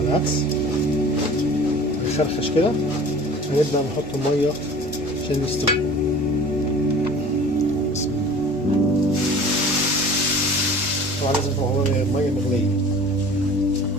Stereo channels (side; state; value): both; normal; correlation 0.43